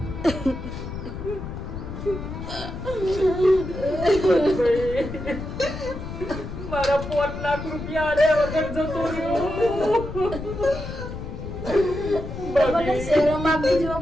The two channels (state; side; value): noise; left; rumble, 8 dB below the sound